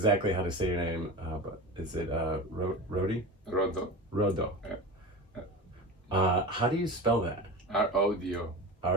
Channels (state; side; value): normal; both; correlation 0.29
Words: how to say your name, but is it Rodi? Rodo. Rodo. Yeah. How do you spell that? R-O-D-O.